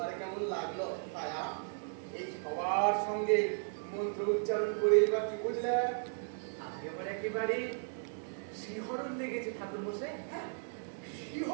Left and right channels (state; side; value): silent; left; digital silence